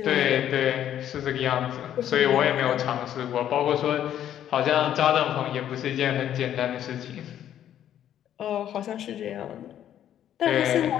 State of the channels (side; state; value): right; quieter; 10.7 dB